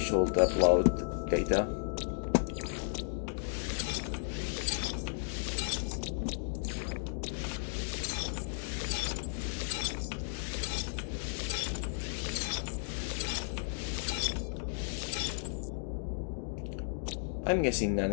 upload data. I'm guessing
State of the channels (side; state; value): right; silent; digital silence